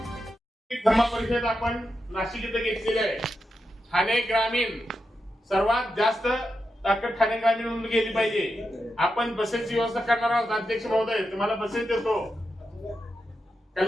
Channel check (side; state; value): both; normal; correlation 0.88